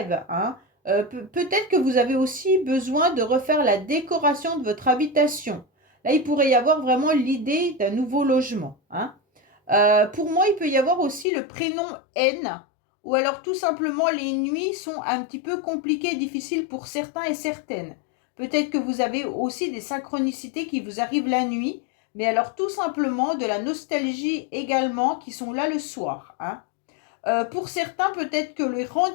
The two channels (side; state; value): right; drops out; at 11.2 s